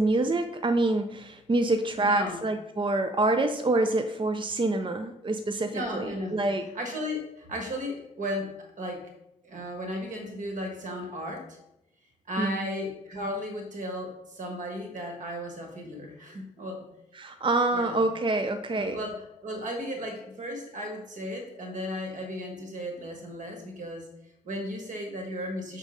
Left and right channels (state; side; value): normal; both; correlation 0.53